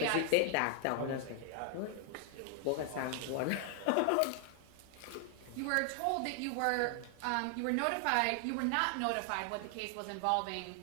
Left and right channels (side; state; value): both; different; correlation 0.00